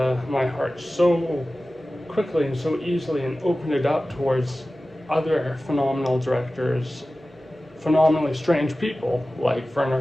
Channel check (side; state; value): both; normal; correlation 0.96